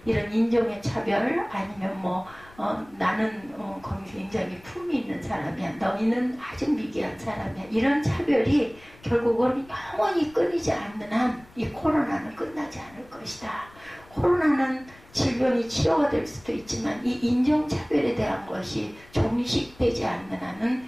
이런 인종의 차별, 아니면 나는 굉장히 품이 있는 사람이야. 너희는 아주 미개한 사람이야. 이런 차별이 결국은 영원히 끊이지 않는 한 이 코로나는 끝나지 않을 것이다. 코로나는 질병이 치료가 될 수도 있지만 이 인종차별에 대한 것이 종식되지 않는 한은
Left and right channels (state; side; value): noise; left; rumble, 24 dB below the sound